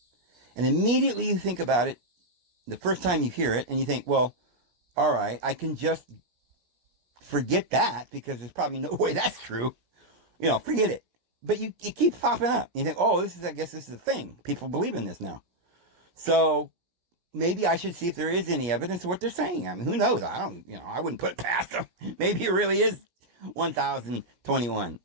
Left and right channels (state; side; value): late; left; 17 ms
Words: And immediately you think about it, the first time you hear it, and you think, well, all right, I can just forget that because there's probably no way that's true. Forget it. But it keeps popping up. You think, oh, I guess this is a thing. People believe in this now. So maybe I should see if there is any evidence of what they're saying. I mean, who knows? I wouldn't put it past them. Maybe it really is 1021,